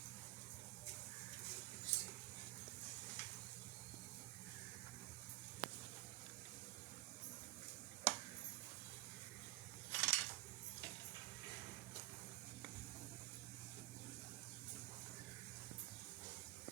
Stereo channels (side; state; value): left; quieter; 19.7 dB